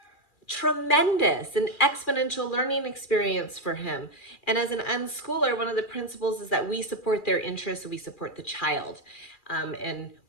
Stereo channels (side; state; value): right; late; 2.4 ms